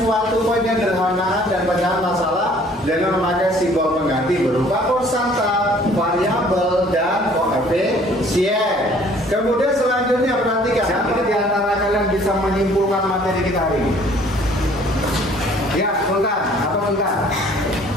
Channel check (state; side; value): normal; both; correlation 0.56